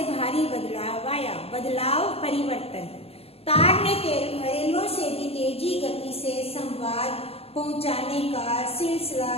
भारी बदलाव आया। बदलाव, परिवर्तन। तार ने रेलों से भी तेजी गति से संवाद पहुंचाने का सिलसिला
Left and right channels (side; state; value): right; late; 0.29 ms